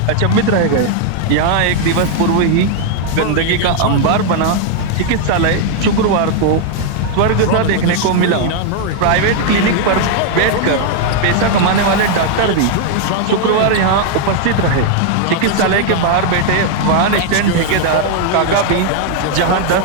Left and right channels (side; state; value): both; different; correlation 0.00